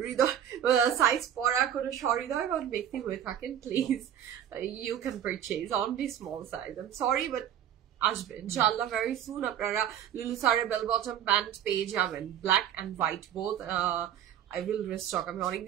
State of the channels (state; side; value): quieter; left; 10.0 dB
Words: হৃদয় সাইজ পরা কোনো সহৃদয় বা ব্যক্তি হয়ে থাকেন, please you can purchase only small size. I am sorry but আসবে ইনশাআল্লাহ ভেরি সুন। আপনারা লুলু সারের বেল বটম প্যান্ট পেয়ে যাবেন, black and white both. I will restock, আমি